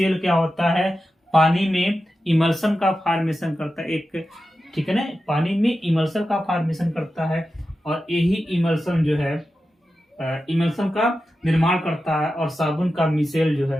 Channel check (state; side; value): normal; both; correlation 0.92